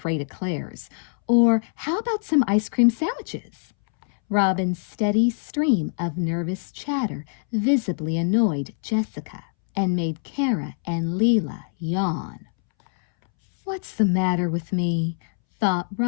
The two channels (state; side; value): silent; right; 63 dB below the other